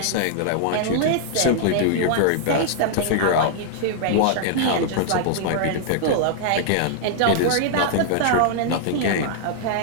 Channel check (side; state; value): both; different; correlation -0.01